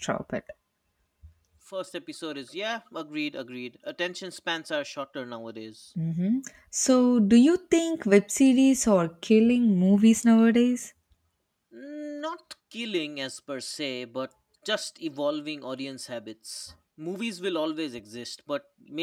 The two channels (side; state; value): both; identical; correlation 1.00